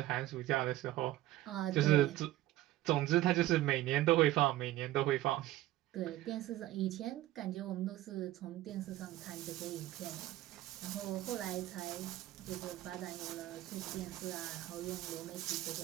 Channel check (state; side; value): quieter; left; 15.5 dB